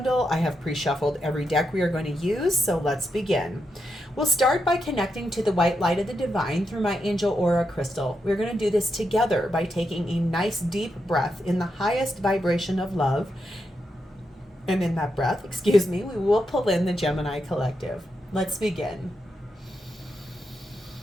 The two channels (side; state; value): both; normal; correlation 0.84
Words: I have pre-shuffled every deck we are going to use, so let's begin. We'll start by connecting to the white light of the divine through my angel aura crystal. We're going to do this together by taking a nice deep breath in the highest vibration of love. And in that breath, we will pull in the Gemini collective. Let's begin.